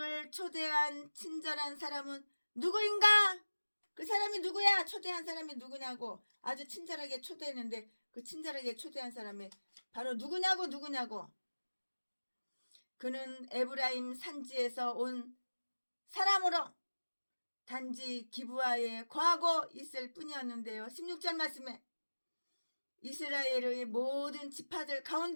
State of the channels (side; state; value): both; inverted; correlation -1.00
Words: 초대한 친절한 사람은 누구인가? 그 사람이 누구야? 초대한 사람이 누구냐고 아주 친절하게 초대했는데 그 친절하게 초대한 사람이 바로 누구냐고 그는 에브라임 산지에서 온 사람으로 단지 기브아에 거하고 있을 뿐이었는데요. 16절 말씀에 이스라엘의 모든 지파들